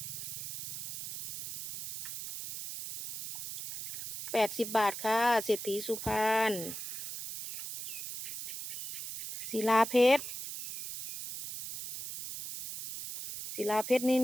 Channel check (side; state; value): right; noise; hiss, 7 dB below the sound